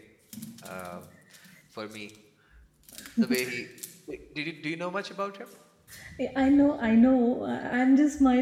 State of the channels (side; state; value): both; identical; correlation 1.00